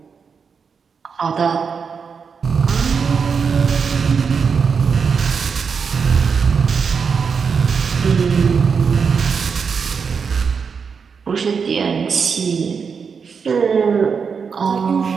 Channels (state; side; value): quieter; left; 5.9 dB